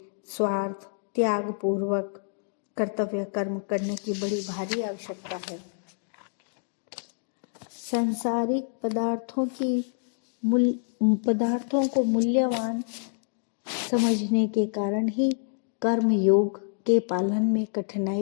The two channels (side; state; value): right; silent; digital silence